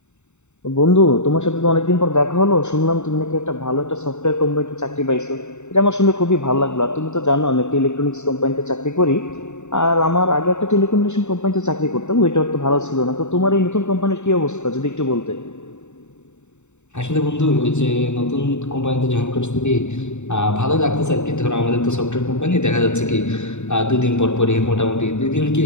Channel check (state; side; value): late; right; 0.83 ms